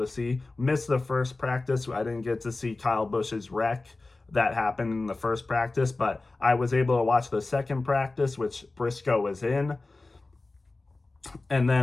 see. Missed the first practice. I didn't get to see Kyle Busch's wreck that happened in the first practice, but I was able to watch the second practice, which Briscoe was in, and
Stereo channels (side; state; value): right; quieter; 3.3 dB